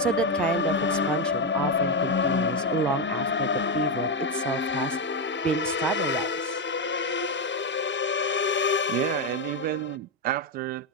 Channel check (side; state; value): both; normal; correlation 0.06